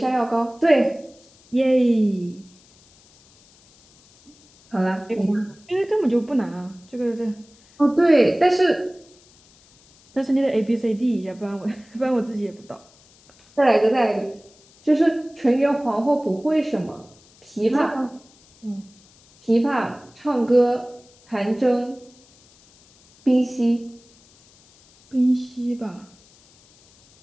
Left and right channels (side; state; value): left; noise; hiss, 29 dB below the sound